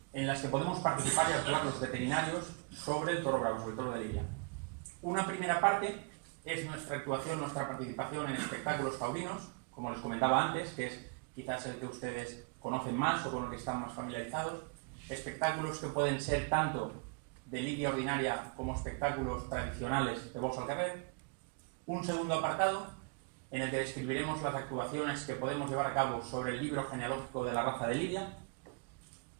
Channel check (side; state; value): left; quieter; 34.6 dB